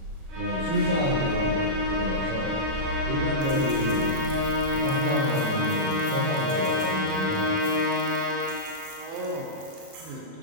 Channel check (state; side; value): late; left; 37 ms